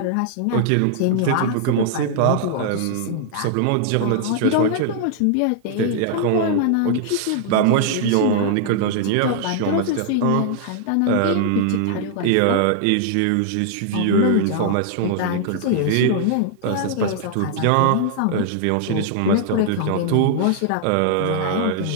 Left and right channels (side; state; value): both; different; correlation 0.00